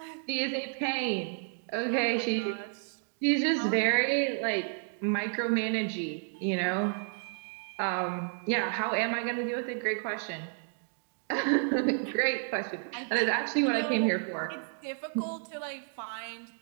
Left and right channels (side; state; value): left; silent; 57 dB below the other